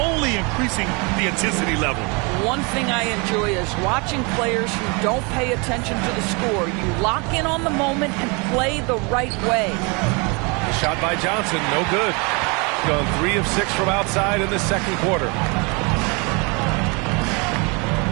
increasing the intensity level. One thing I enjoy is watching players who don't pay attention to the score. You lock in on the moment and play the right way. The shot by Johnson, no good. Gone 3 of 6 from outside in the second quarter.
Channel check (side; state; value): left; quieter; 30.4 dB